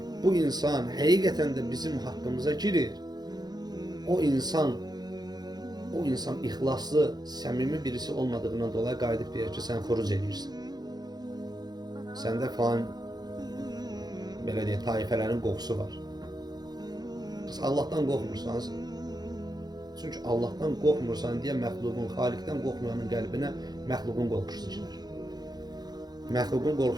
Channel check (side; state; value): left; late; 0.19 ms